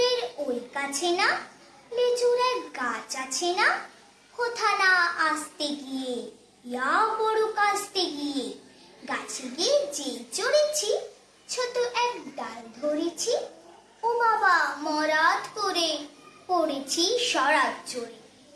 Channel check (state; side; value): identical; both; correlation 1.00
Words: ওই কাছে না লিচুর এক গাছ আছে না? কোথা না আসতে গিয়ে, ইয়া বড় কাস্তে গিয়ে, গাছে গিয়ে যেই চড়েছি, ছোট এক ডাল ধরেছি। ও বাবা মরাত করে পড়েছি সরাত চড়ে।